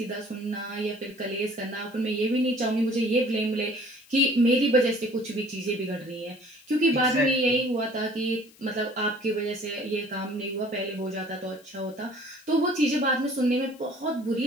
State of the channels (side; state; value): left; noise; hiss, 26 dB below the sound